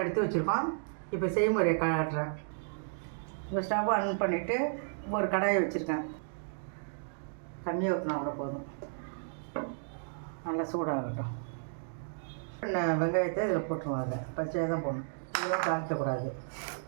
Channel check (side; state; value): left; silent; digital silence